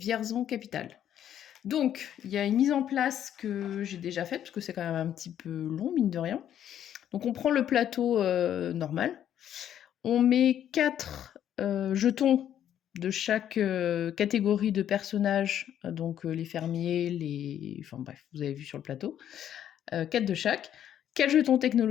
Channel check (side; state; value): right; quieter; 10.4 dB